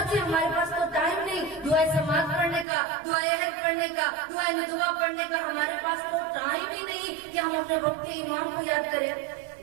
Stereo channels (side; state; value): left; drops out; at 2.7 s